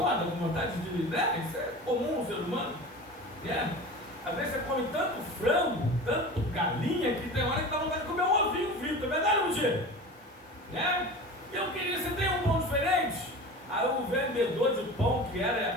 com vontade de, né? Isso é comum no ser humano, né? Às vezes você come tanto frango, tanto galinha, que tem hora que dá vontade de comer um ovinho frito, é verdade, Luigi? Né? Eu queria, você tem um pão diferente? Aí o vendedor de pão, que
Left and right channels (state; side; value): normal; both; correlation 0.34